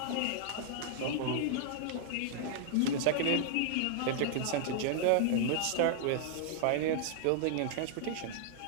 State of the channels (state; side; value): different; both; correlation -0.01